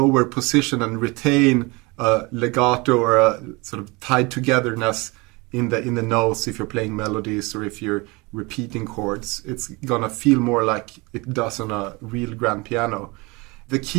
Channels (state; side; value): quieter; left; 25.8 dB